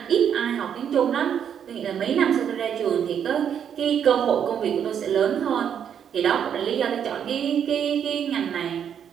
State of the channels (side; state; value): left; quieter; 8.5 dB